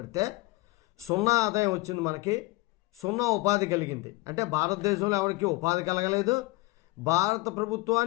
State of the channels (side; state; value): right; quieter; 21.3 dB